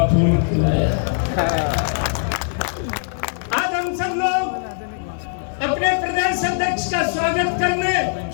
फूल खिलाया। आज हम सब लोग अपने प्रदेश अध्यक्ष का स्वागत करने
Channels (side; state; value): right; silent; 64 dB below the other